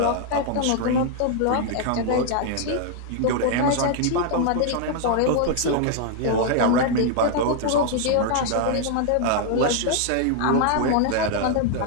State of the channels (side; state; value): both; different; correlation 0.00